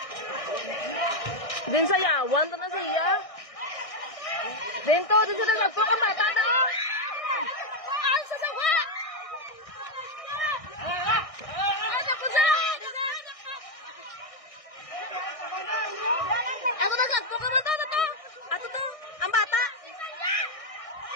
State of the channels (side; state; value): right; late; 1.6 ms